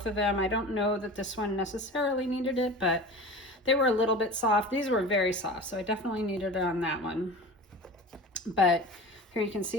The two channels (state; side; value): normal; both; correlation 0.35